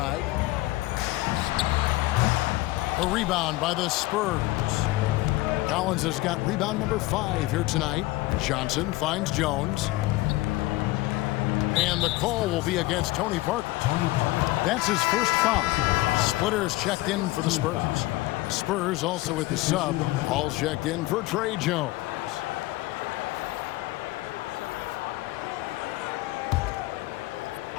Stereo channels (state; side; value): quieter; right; 19.0 dB